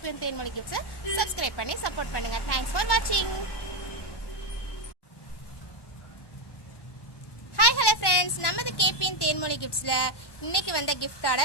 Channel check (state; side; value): late; right; 1.1 ms